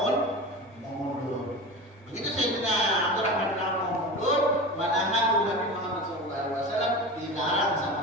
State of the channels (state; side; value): normal; both; correlation 0.29